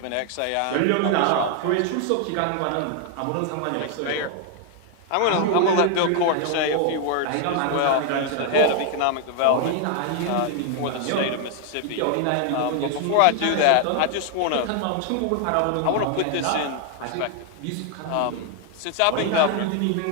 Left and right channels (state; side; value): different; both; correlation 0.00